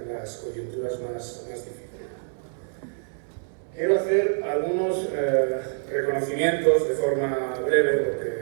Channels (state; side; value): silent; left; 61 dB below the other